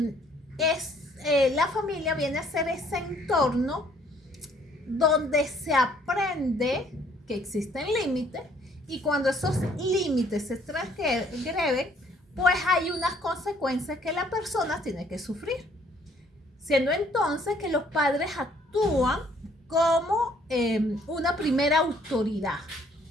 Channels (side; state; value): both; normal; correlation 0.62